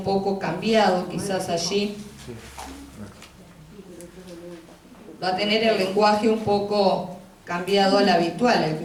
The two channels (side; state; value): both; identical; correlation 1.00